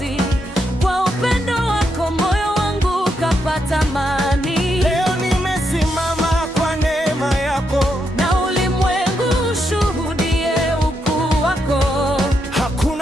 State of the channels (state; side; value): normal; both; correlation 0.81